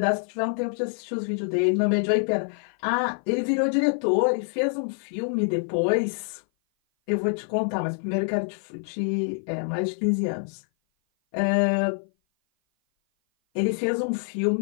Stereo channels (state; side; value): silent; right; 56 dB below the other